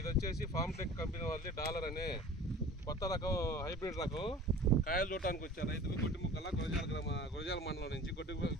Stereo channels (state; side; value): normal; both; correlation 0.42